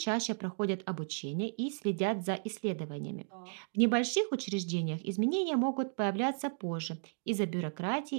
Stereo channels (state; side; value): silent; left; digital silence